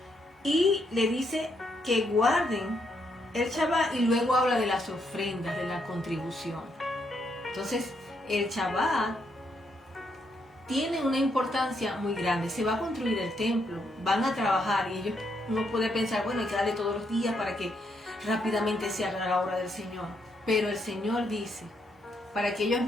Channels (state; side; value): normal; both; correlation 0.77